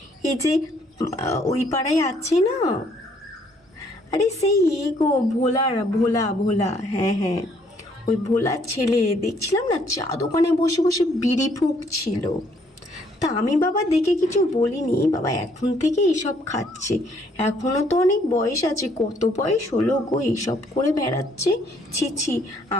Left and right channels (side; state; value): both; normal; correlation 0.66